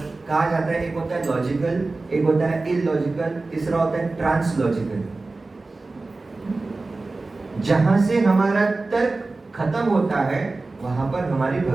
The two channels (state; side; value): quieter; left; 3.4 dB